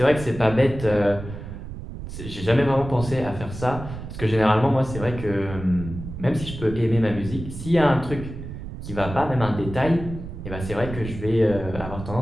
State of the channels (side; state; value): right; noise; rumble, 10 dB below the sound